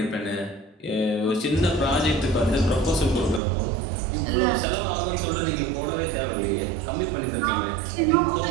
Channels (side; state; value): left; drops out; at 3.4 s